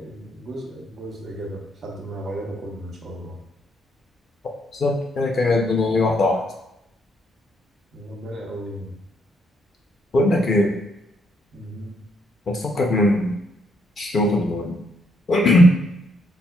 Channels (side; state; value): both; normal; correlation 0.73